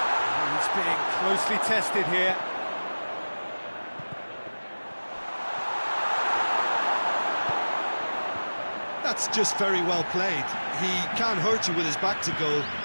He's being closely tested here. That's just very well played. He can't hurt you with his back to goal,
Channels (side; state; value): both; inverted; correlation -1.00